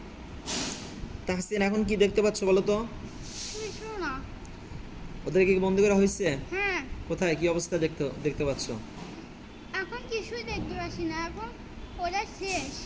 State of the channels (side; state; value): both; identical; correlation 1.00